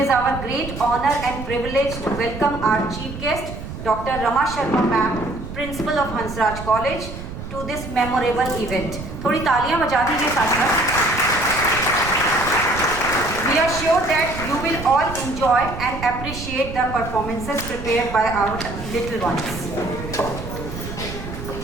our great honor and privilege to welcome our chief guest, Dr. Rama Sharma Ma'am, Principal of Hansraj College, to this memorable event. थोड़ी तालियां बजा दीजिए साथ। We are sure that you will all enjoy and appreciate the performances prepared by our little ones.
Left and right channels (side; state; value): right; noise; rumble, 9 dB below the sound